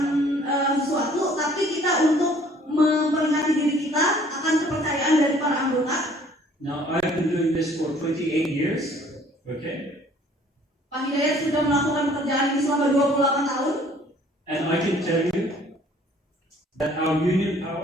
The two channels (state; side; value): normal; both; correlation 0.56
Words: sesuatu, tapi kita untuk memperingati diri kita akan kepercayaan dari para anggota. Now, I've been doing this for 28 years, okay? Pak Hidayat sudah melakukan pekerjaan ini selama 28 tahun. And I can tell you that our union